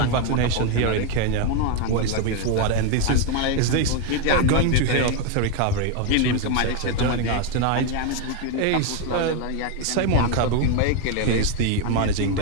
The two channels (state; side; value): different; both; correlation 0.01